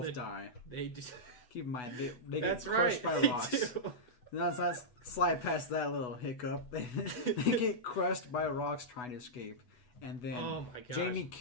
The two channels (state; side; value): late; right; 8.1 ms